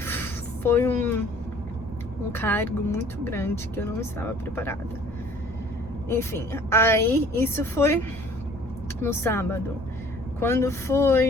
foi um cargo muito grande que eu não estava preparada. Enfim, aí isso foi no sábado. Quando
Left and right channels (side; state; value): both; normal; correlation 0.53